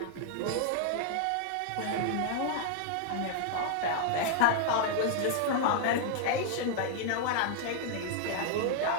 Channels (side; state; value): both; different; correlation 0.00